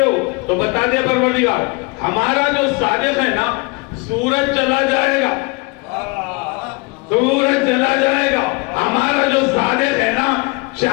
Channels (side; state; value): right; quieter; 27.9 dB